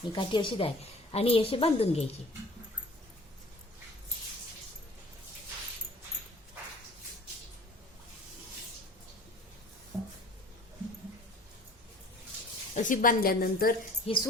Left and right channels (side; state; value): both; normal; correlation 0.47